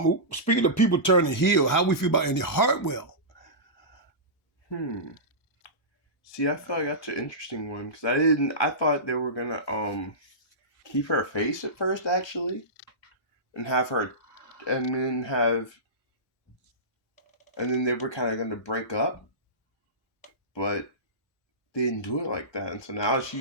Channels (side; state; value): both; normal; correlation -0.19